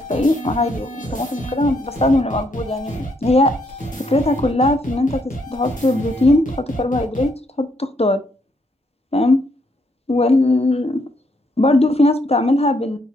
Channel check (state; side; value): normal; both; correlation 0.73